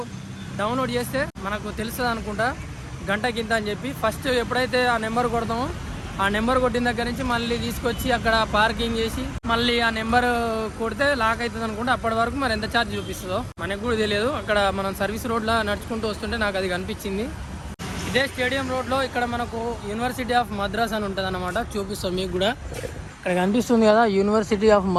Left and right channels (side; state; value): both; identical; correlation 1.00